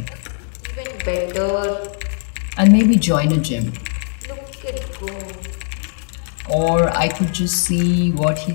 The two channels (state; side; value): silent; right; digital silence